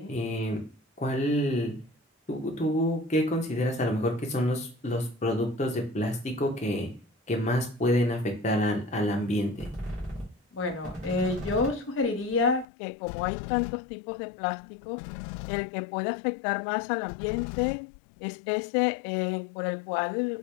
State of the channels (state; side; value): drops out; right; at 12.7 s